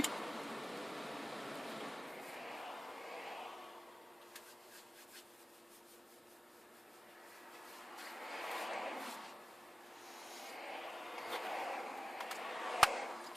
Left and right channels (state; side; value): normal; both; correlation 0.96